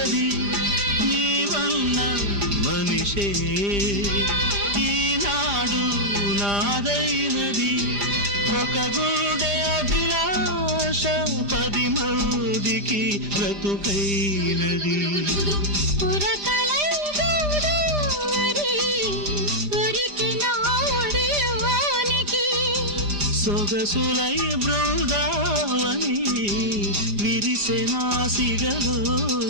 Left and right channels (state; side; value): late; left; 5.0 ms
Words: నీవన్న మనిషే ఈనాడు నాదైనది. ఒక గుండె అభిలాష 10 మందికి బ్రతుకైనది. సొగసులై బృందావని విరిసెనా